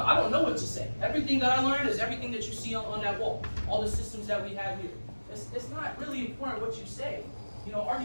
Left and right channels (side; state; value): both; inverted; correlation -1.00